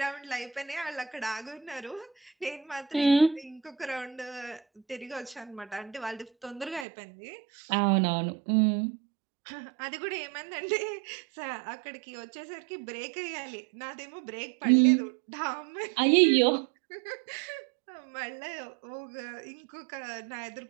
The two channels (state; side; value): drops out; left; at 6.9 s